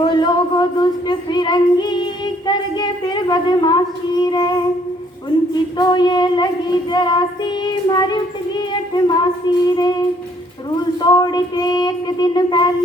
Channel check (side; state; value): both; normal; correlation 0.64